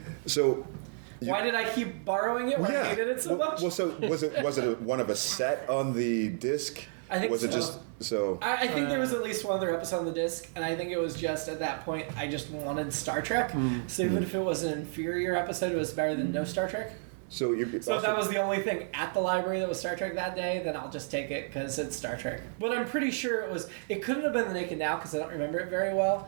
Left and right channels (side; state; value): left; silent; digital silence